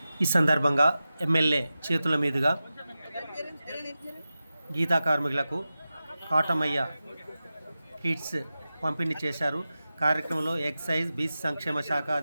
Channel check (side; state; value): both; inverted; correlation -0.94